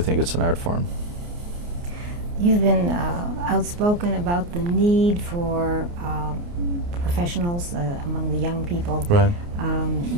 it's an art form. You've been outspoken about the need for professionals among the young people. Right.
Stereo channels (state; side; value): late; left; 29 ms